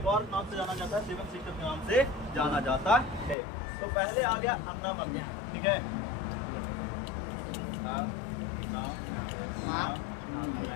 और नाम से जाना जाता है, 7 सेक्टर के नाम से जाना जाता है। तो पहले आ गया अन्ना मम्मी, ठीक है।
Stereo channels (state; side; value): drops out; right; at 3.4 s